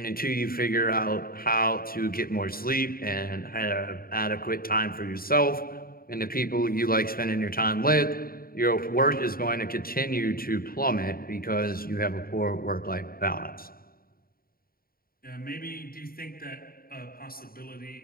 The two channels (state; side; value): late; right; 0.43 ms